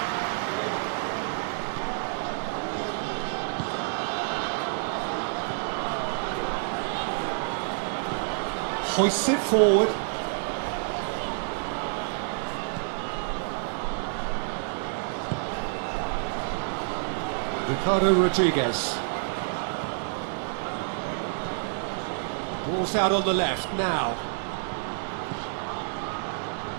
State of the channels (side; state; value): left; silent; digital silence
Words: Hoists it forward. Ricardo Rodriguez. Ball's out on the left now.